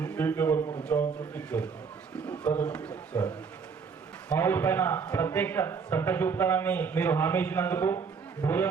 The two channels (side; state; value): left; quieter; 5.7 dB